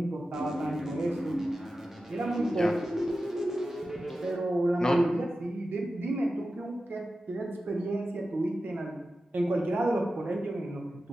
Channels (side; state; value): both; normal; correlation 0.93